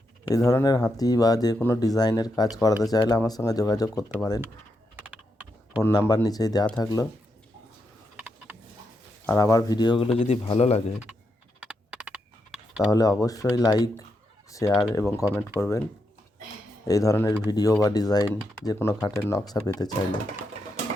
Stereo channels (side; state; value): both; normal; correlation 0.82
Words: এই ধরনের হাতি বা যে কোনো ডিজাইনের কাজ করাতে চাইলে আমার সঙ্গে যোগাযোগ করতে পারেন। ফোন নাম্বার নিচেই দেওয়া থাকলো। আর আমার ভিডিওগুলো যদি ভালো লাগে তাহলে অবশ্যই লাইক, শেয়ার এবং কমেন্ট করবেন। এই ধরনের ভিডিও বা ডিজাইন যে কোনো খাটের নকশা পেতে চাইলে